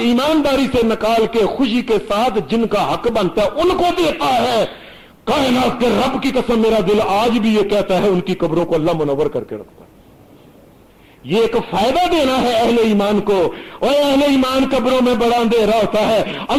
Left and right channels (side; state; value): both; identical; correlation 1.00